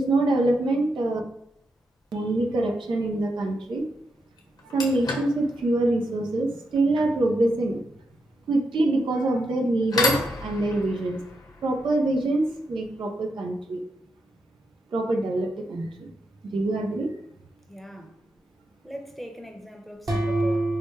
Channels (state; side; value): normal; both; correlation 0.84